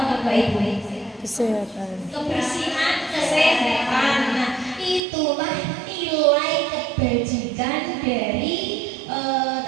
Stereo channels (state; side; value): drops out; left; at 5.0 s